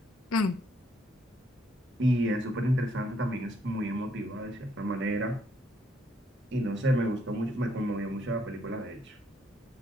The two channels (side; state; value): both; normal; correlation 0.72